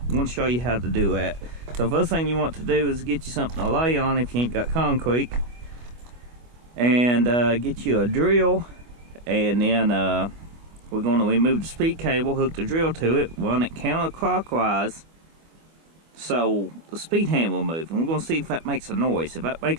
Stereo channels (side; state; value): left; late; 25 ms